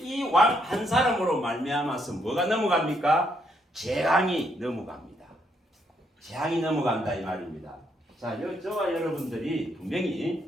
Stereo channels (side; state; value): both; normal; correlation 0.74